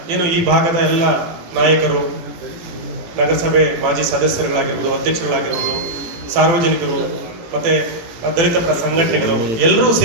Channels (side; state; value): left; late; 18 ms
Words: ಏನು ಈ ಭಾಗದ ಎಲ್ಲ ನಾಯಕರು, ನಗರಸಭೆ ಮಾಜಿ ಸದಸ್ಯರುಗಳಾಗಿರ್ಬೋದು, ಅಧ್ಯಕ್ಷರುಗಳಾಗಿರ್ಬೋದು, ಸಾರ್ವಜನಿಕರು ಮತ್ತೆ ದಲಿತ ಪರ ಸಂಘಟನೆಗಳು ಎಲ್ಲರೂ